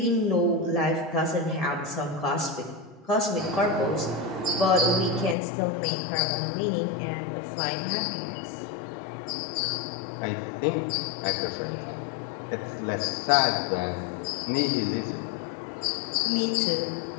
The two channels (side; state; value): right; drops out; at 5.4 s